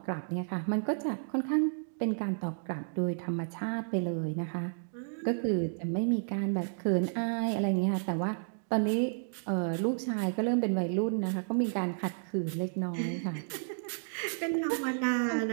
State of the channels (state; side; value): silent; left; digital silence